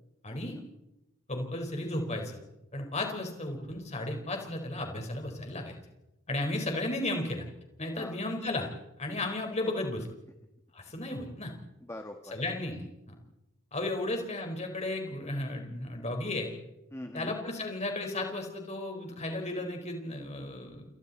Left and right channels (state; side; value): normal; both; correlation 0.44